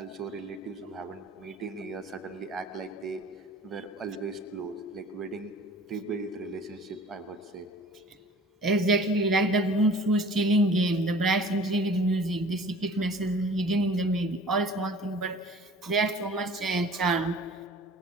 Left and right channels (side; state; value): both; normal; correlation 0.46